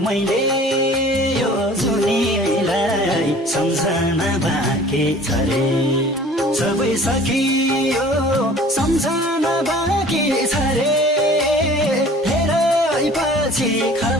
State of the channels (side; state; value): both; normal; correlation 0.48